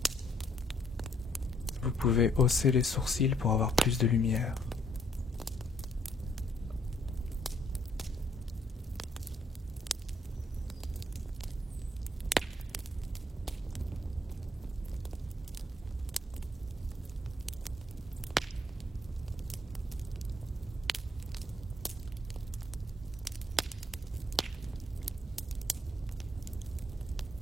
Vous pouvez hausser les sourcils pour avoir plus de lumière.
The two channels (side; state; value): both; normal; correlation 0.68